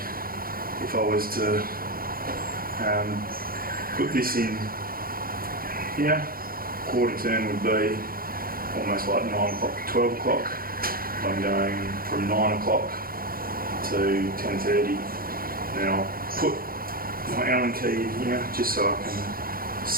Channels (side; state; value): left; late; 0.42 ms